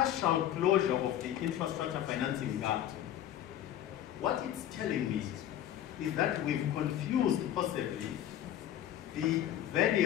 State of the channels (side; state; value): right; quieter; 11.5 dB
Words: closure of the infrastructure financing gap, what it's telling me is that we've confused possibly the